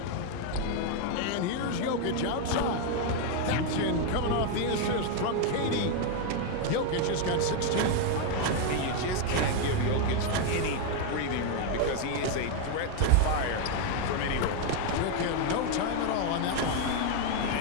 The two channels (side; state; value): both; different; correlation 0.01